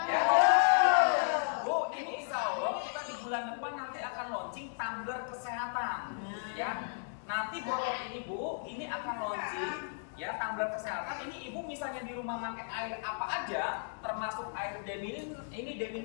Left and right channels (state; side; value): silent; right; digital silence